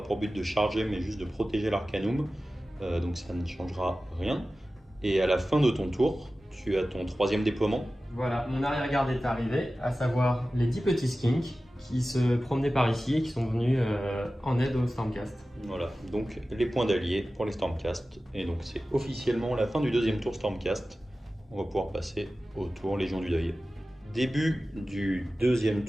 pour but de charger, mais juste de protéger l'Arcanum. Donc ça ne changera rien. Et à la fin de ton tour, tu as ton troisième déploiement. Voilà, mon arrière-garde est arrivé, à savoir les 10 petits skinks qui se promenaient par ici et qui sont venus en aide au Stormcast. Voilà, donc les points d'alliés pour les Stormcast. Et donc c'est officiellement la fin du deuxième tour Stormcast. On va pouvoir passer au tour Légion du Deuil. Début du deuxième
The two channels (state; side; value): normal; both; correlation 0.95